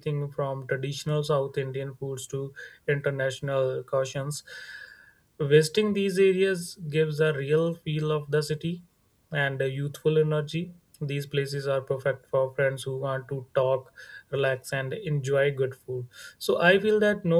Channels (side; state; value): both; identical; correlation 1.00